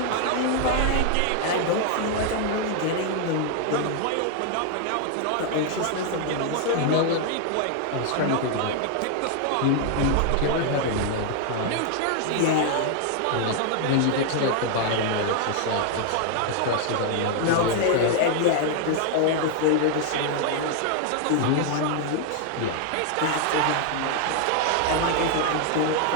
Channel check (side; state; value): both; different; correlation 0.00